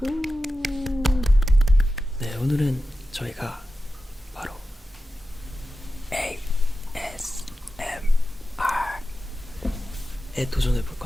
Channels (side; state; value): both; normal; correlation 0.91